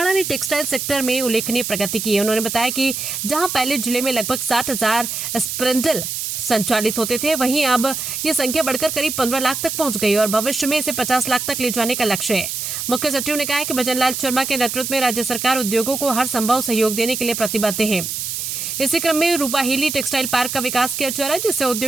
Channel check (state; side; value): noise; right; hiss, 4 dB below the sound